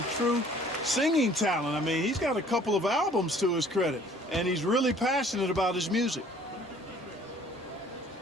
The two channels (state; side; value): normal; both; correlation 0.55